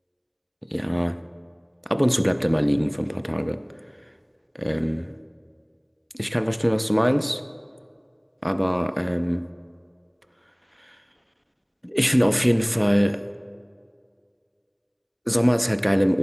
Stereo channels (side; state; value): both; identical; correlation 1.00